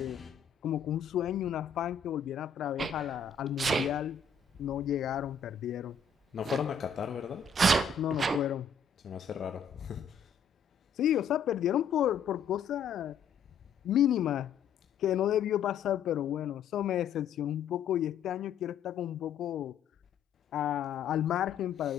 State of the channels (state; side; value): quieter; right; 5.9 dB